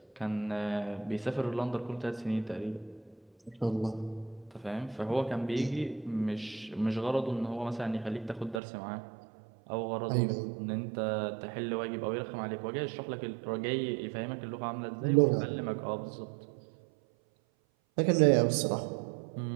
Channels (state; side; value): drops out; left; at 8.6 s